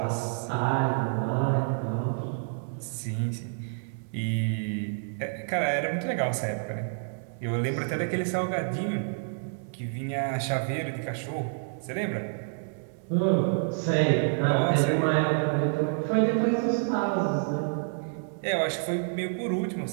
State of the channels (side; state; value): left; silent; 59 dB below the other